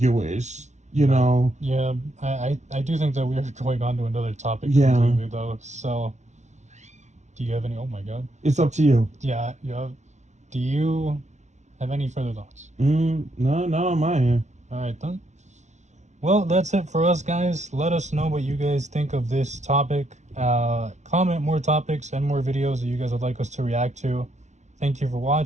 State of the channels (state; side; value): late; left; 0.34 ms